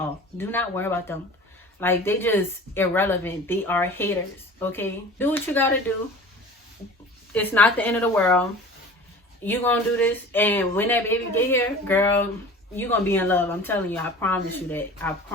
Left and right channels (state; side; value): normal; both; correlation 0.40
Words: Do not worry about them. Like, they just irrelevant. They are haters. Okay? Do what you gotta do. It's not the end of the world. You gonna do this, and when that baby get here, girl, you gonna be in love. I'm telling you. I promise you that. I